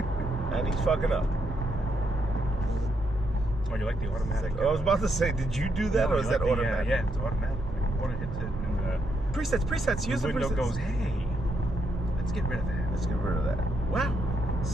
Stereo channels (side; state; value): both; normal; correlation 0.79